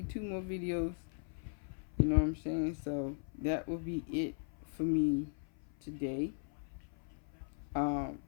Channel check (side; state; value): right; silent; 52 dB below the other